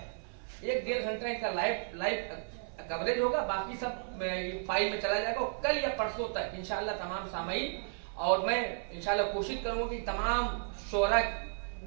1-1.5 घंटा इनका लाइव कवरेज होगा, बाकी सब फाइल में चला जाएगा। कल या परसों तक इंशाअल्लाह तमाम सामाईन, और मैं इंशाअल्लाह कोशिश करूँगा कि तमाम शोरा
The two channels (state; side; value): silent; left; 55 dB below the other